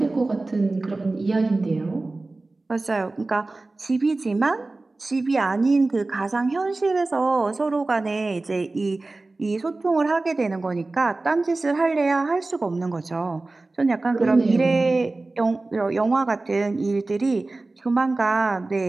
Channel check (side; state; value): left; quieter; 3.2 dB